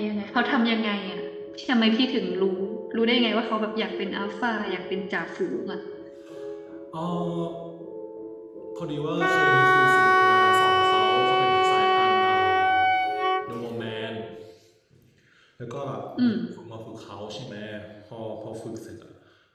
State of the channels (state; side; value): identical; both; correlation 1.00